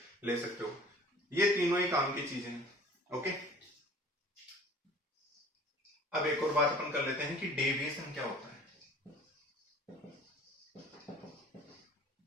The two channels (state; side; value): normal; both; correlation 0.48